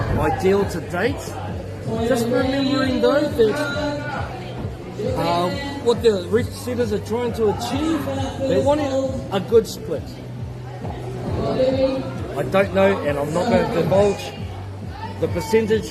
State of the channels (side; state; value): both; identical; correlation 1.00